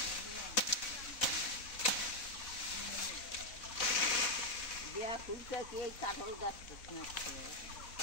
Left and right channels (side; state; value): right; late; 4.1 ms